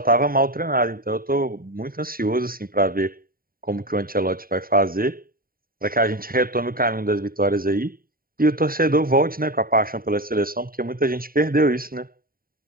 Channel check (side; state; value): left; late; 0.43 ms